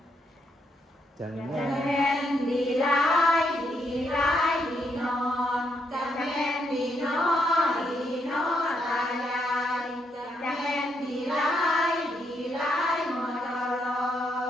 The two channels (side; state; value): both; normal; correlation 0.77